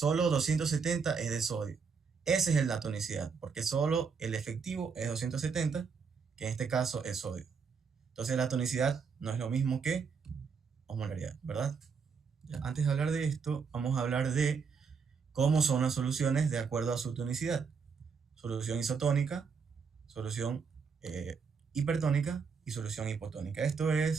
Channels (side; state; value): left; quieter; 5.7 dB